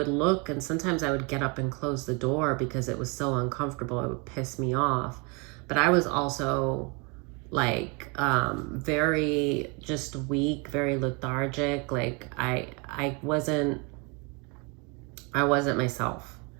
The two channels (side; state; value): left; quieter; 31.7 dB